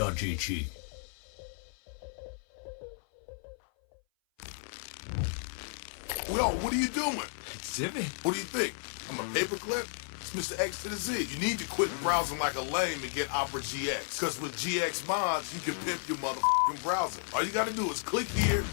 Yo, what are you doing? Exhibit. What do you think? I'm a paperclip? It's Mr. X to the Z. You need to quit browsing like a lame and get Opera GX. Cause with GX mods, you can pimp your motherfucking browser. All you gotta do is click here,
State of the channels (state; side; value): silent; right; 56 dB below the other